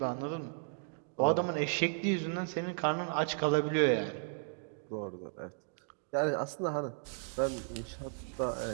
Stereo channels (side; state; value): left; silent; digital silence